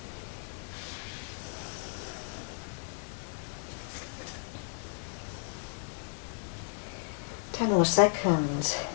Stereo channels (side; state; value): right; silent; 55 dB below the other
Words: Ten more seconds.